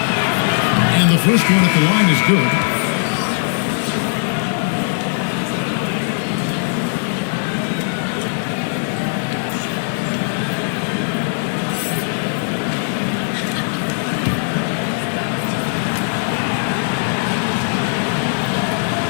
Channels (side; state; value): right; silent; 67 dB below the other